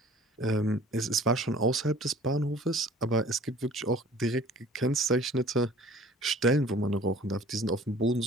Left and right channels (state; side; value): normal; both; correlation 0.49